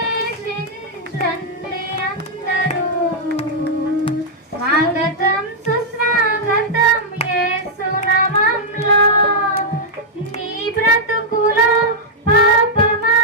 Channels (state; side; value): normal; both; correlation -0.05